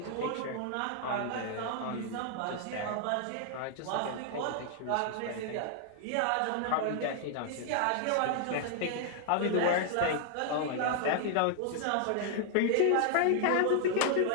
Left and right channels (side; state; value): both; different; correlation 0.00